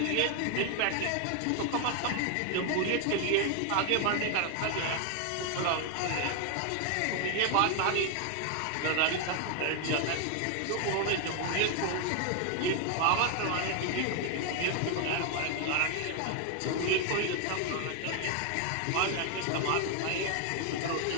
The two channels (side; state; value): both; different; correlation 0.00